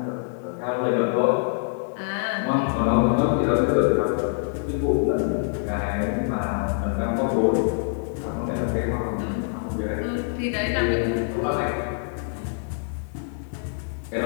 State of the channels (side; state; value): right; silent; digital silence